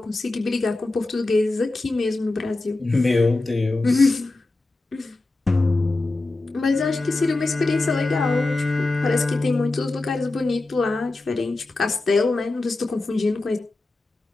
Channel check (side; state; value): right; quieter; 3.1 dB